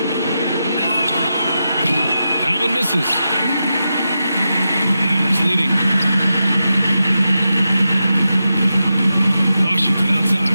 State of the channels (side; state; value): both; inverted; correlation -0.89